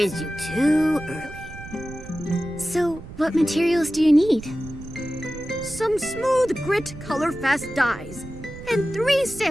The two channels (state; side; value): noise; right; rumble, 14 dB below the sound